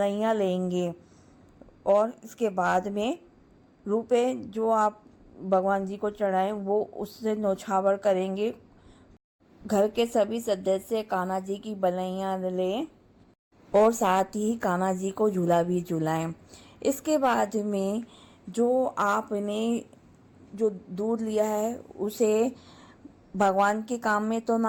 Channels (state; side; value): identical; both; correlation 1.00